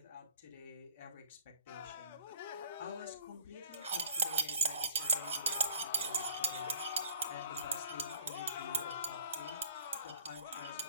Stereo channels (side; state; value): both; inverted; correlation -0.51